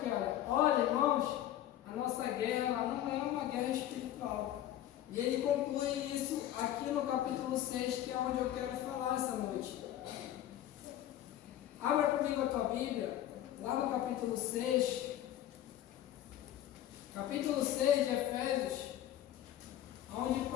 olha irmãos, a nossa guerra ela não é uma guerra espiritual. E ele conclui isso aqui no capítulo 6, que é onde eu quero falar essa noite. Abra comigo a tua Bíblia, lá no capítulo 6. Capítulo 6 de Efésios, onde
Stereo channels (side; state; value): right; quieter; 12.4 dB